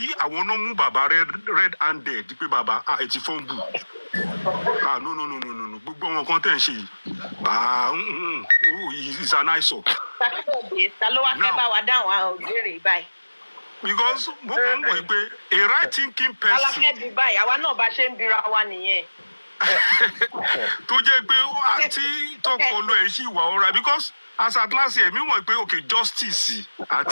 àwọn náà mú bàbá red handed pé bàbá ẹ ti fọ́n bù. No. Gbogbo wọn kan tẹ̀ ń ṣe yìí. It's an eyesore. Ta ló wá fẹ́ bá wa dáhùn àwọn òbéèrè báyìí? Because mo kàn ń wò pé a right thinking person. Aláfẹ́ di báyìí, àwa náà bá ṣe ń bira wa nìyẹn. Tó jẹ́ pé àti tọpọlọ ẹ̀ ṣì wà ọ̀rá because as at last year mi mọ̀ pé okay justice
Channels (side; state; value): both; inverted; correlation -1.00